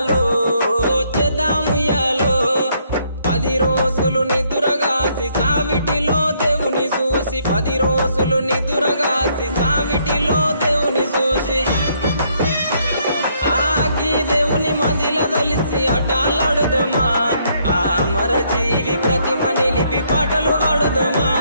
చేద్దాముయాలో 10 రోజులు నిదురగాసి సావిటిలో దేవుని చూసి 10 రోజులు నిదురగాసి సావిటిలో దేవుని చూసి ఆగి దేవుని మదిల దలిసి అటాలాడుదమా ఆ అమర జీవి ప్రతిమ నిలిపి పాటలు పాడుదమా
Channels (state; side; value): inverted; both; correlation -0.70